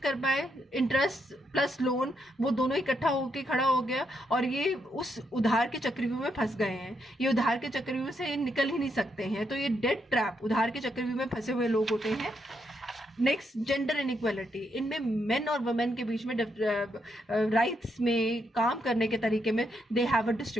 पाए, इंटरेस्ट प्लस लोन वो दोनों इकट्ठा होके खड़ा हो गया और ये उस उधार के चक्रव्यूह में फंस गए हैं। ये उधार के चक्रव्यूह से निकल ही नहीं सकते हैं, तो ये डेट ट्रैप, उधार के चक्रव्यूह में फंसे हुए लोग होते हैं। Next, gender inequality. इनमें मेन और वुमेन के बीच में राइट्स में, काम करने के तरीके में दे हैव अ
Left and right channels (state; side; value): normal; both; correlation 0.79